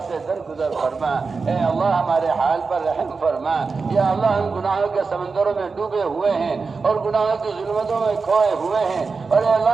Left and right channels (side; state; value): left; quieter; 4.6 dB